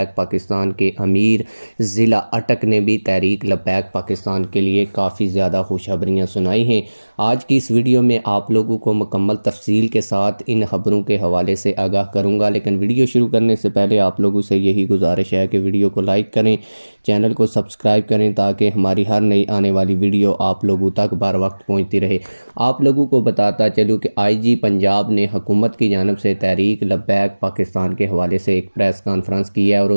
पाकिस्तान के अमीर ज़िला अटक ने भी तहरीक लब्बैक पाकिस्तान के लिए काफ़ी ज़्यादा खुशखबरियाँ सुनाई हैं। आज की इस वीडियो में आप लोगों को मुकम्मल तफसील के साथ इन खबरों के हवाले से आगाह करूंगा, लेकिन वीडियो शुरू करने से पहले आप लोगों से यही गुजारिश है कि वीडियो को लाइक करें, चैनल को सब्सक्राइब करें ताकि हमारी हर नई आने वाली वीडियो आप लोगों तक बर वक्त पहुँचती रहे। आप लोगों को बताता चलूँ कि IG पंजाब ने हुकूमत की जानब से तहरीक लब्बैक पाकिस्तान के हवाले से एक प्रेस कॉन्फ्रेंस की है और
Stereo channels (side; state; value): both; inverted; correlation -1.00